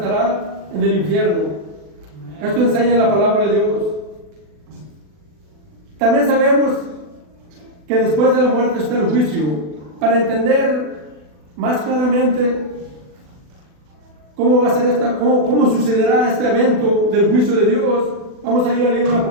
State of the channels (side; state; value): left; late; 40 ms